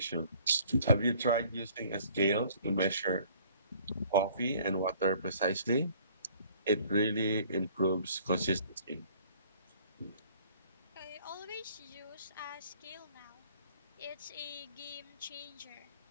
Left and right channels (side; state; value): both; inverted; correlation -0.56